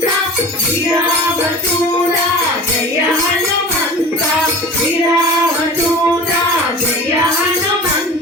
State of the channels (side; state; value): both; normal; correlation 0.37